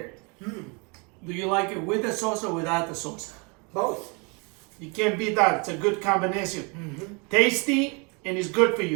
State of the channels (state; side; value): quieter; left; 31.8 dB